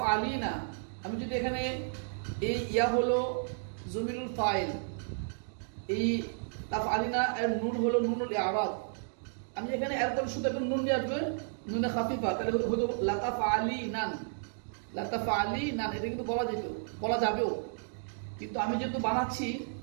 আমি যদি এখানে এই ইয়া হলো জমিরুল ফাইল, এই তাফ আলিনা এর নুন হলো নুনুল ইআরাব। আমি এখানে একদম শুধু একটা নুন নিয়ে আসবে, নুনে খাফিফা, তাহলে হতো লাতাফ আলি নান, লাতাফ আলি নান। এটা কিন্তু বলা যেত, বলা যাবেও, কিন্তু আমি যেহেতু বানাচ্ছি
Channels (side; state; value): left; silent; digital silence